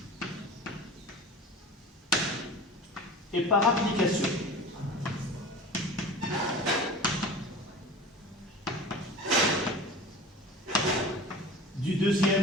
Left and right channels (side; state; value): both; normal; correlation 0.37